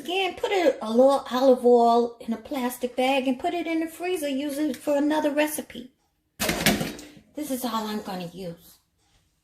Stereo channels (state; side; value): identical; both; correlation 1.00